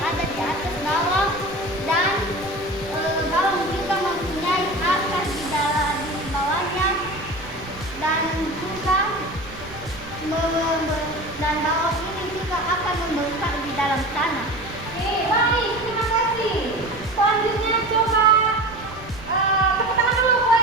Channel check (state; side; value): noise; right; rumble, 17 dB below the sound